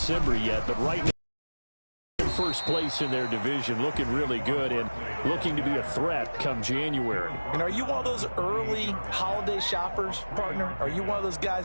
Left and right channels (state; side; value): inverted; both; correlation -1.00